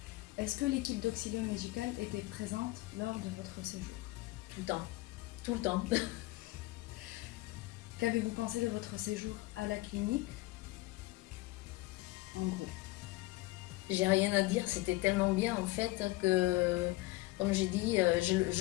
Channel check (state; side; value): quieter; right; 19.9 dB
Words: Est-ce que l'équipe d'Auxilium Médical était présente lors de votre séjour? Tout le temps, tout le temps. Qu'avez-vous pensé de votre séjour à la clinique? En gros. J'ai rien à dire, c'était tellement bien en fait que, comme j'ai dit,